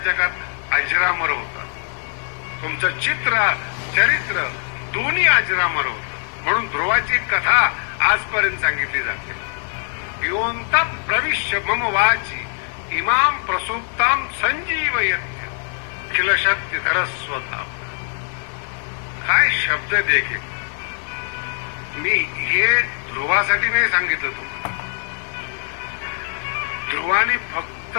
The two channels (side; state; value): right; silent; 60 dB below the other